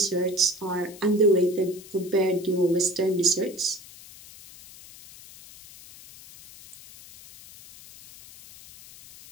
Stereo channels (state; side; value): noise; left; hiss, 19 dB below the sound